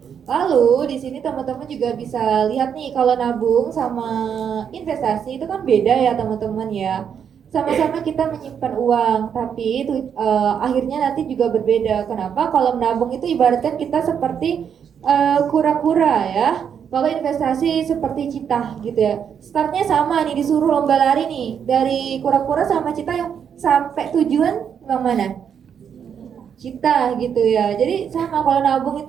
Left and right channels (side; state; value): left; quieter; 7.8 dB